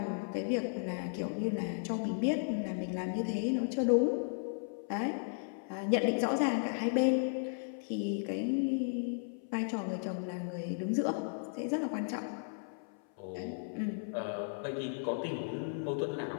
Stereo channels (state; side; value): silent; right; 54 dB below the other